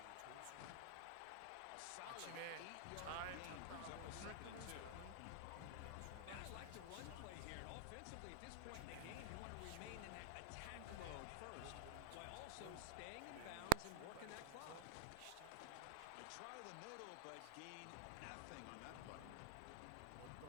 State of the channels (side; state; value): both; different; correlation 0.00